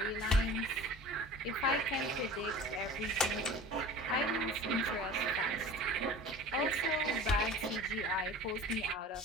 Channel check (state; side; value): normal; both; correlation 0.39